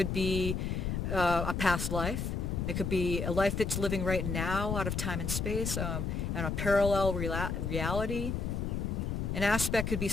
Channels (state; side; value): noise; left; rumble, 1 dB below the sound